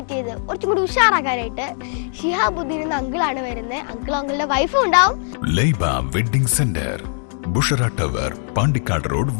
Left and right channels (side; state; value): right; silent; 66 dB below the other